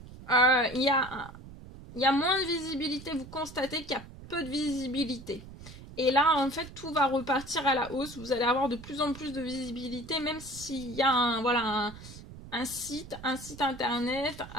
il y a moins de visibilité. Vous constatez qu'il y a peu de visibilité. Et là, en fait, tout va repartir à la hausse. Vous allez avoir de plus en plus de visibilité, même s'il y a un site internet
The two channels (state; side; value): noise; right; rumble, 15 dB below the sound